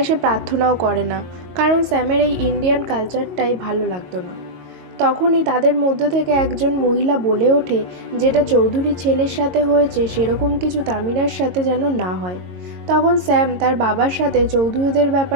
সে প্রার্থনাও করে না, কারণ স্যামের এই ইন্ডিয়ান কালচারটাই ভালো লাগতো না। তখনই তাদের মধ্যে থেকে একজন মহিলা বলে ওঠে যেটা চৌধুরী ছেলের সাথে হয়েছে সেরকম কিছু তামিরার সাথে যেন না হয়। তখন স্যাম তার বাবার সাথে চৌধুরীদের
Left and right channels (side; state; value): left; late; 22 ms